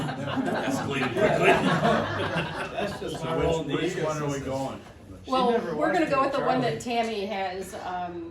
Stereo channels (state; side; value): identical; both; correlation 1.00